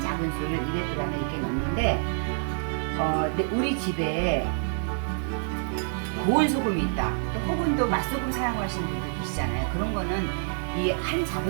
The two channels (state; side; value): silent; left; digital silence